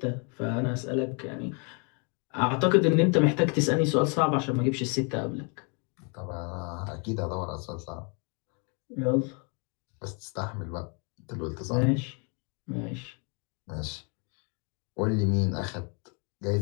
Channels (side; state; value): right; quieter; 35.6 dB